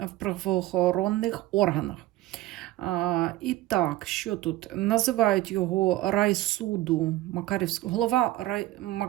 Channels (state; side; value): quieter; left; 16.4 dB